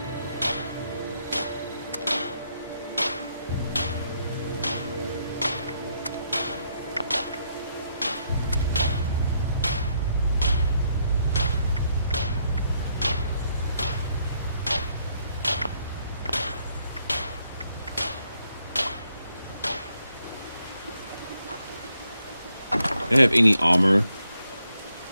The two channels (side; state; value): both; inverted; correlation -0.75